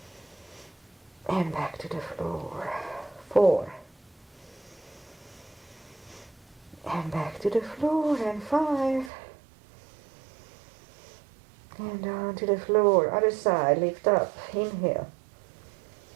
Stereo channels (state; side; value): drops out; left; at 9.1 s